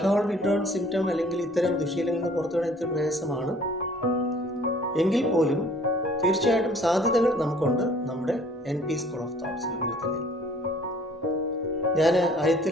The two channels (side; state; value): both; normal; correlation 0.55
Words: വിഡ്രോവൽ സിംറ്റം അല്ലെങ്കിൽ ഇത്തരം ദുശീലങ്ങളിൽ നിന്ന് പുറത്തു വരാൻ ഇത്തിരി പ്രയാസമാണ് എങ്കിൽ പോലും തീർച്ചയായിട്ടും സാധ്യതകൾ നമുക്കുണ്ട് നമ്മുടെ NP സ്കൂൾ ഓഫ് തോട്ട്സ് രൂപത്തിൽ. ഞാൻ